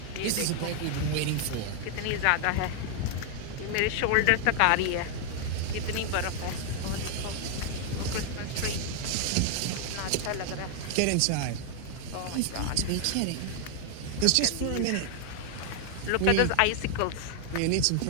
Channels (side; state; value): both; different; correlation 0.00